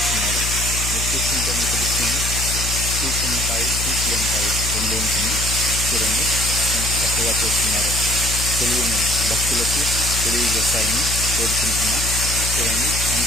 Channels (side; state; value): left; noise; hum, 4 dB below the sound